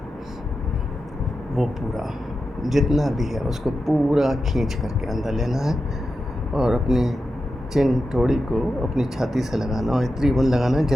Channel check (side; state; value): both; normal; correlation 0.90